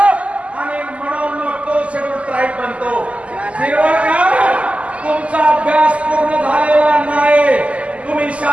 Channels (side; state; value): left; late; 0.063 ms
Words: आणि म्हणून मग तो शेड्यूल ट्राईब बनतो। तुमचा अभ्यास पूर्ण झालेला नाही, तुम्ही